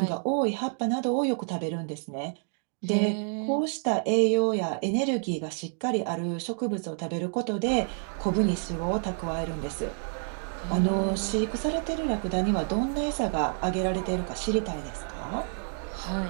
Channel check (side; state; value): left; silent; 59 dB below the other